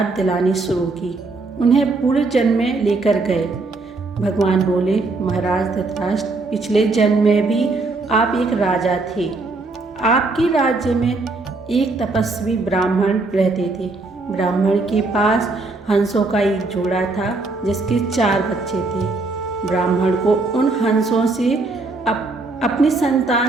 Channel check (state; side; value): quieter; left; 3.4 dB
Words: दिलानी शुरू की। उन्हें पूर्व जन्म में लेकर गए। भगवान बोले, महाराज धृतराष्ट्र, पिछले जन्म में भी आप एक राजा थे। आपके राज्य में एक तपस्वी ब्राह्मण रहते थे। ब्राह्मण के पास हंसों का एक जोड़ा था जिसके 4 बच्चे थे। ब्राह्मण को उन हंसों से अपनी